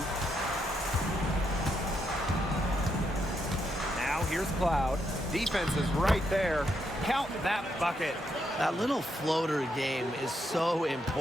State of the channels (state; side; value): normal; both; correlation 0.79